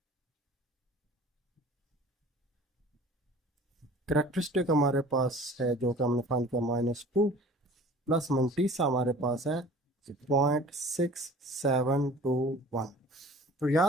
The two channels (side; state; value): both; normal; correlation 0.46